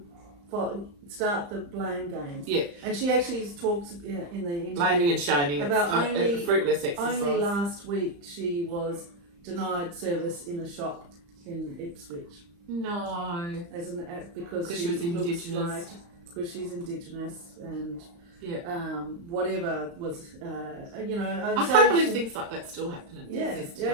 start the blame game. Yeah. And she actually talks in the interview... Blaming and shaming. About a fruitless exercise. Only last week she was denied service in a shop in Ipswich. No. Because she was Indigenous. Because she's Indigenous and... Yeah. Whatever was, you know. I can't believe things like that still happen in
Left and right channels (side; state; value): left; late; 35 ms